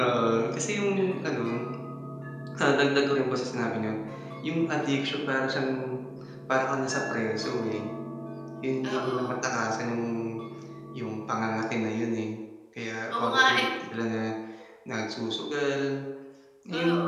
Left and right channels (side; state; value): both; identical; correlation 1.00